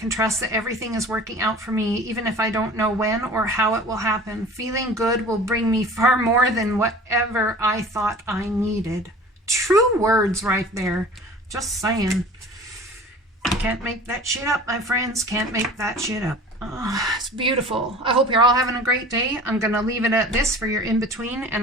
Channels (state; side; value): normal; both; correlation 0.42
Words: trust that everything is working out for me, even if I don't know when or how it will happen. Feeling good will bring me far more than whatever I thought I needed. True words right there. Just saying. Can't make that shit up, my friends. Can't make that shit up. Oh, it's beautiful. I hope you're all having a great day. I'm going to leave it at this for your in-between,